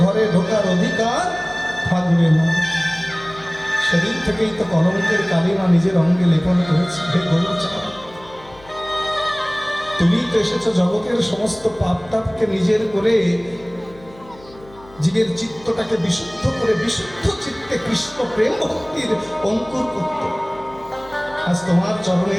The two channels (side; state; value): left; noise; hum, 23 dB below the sound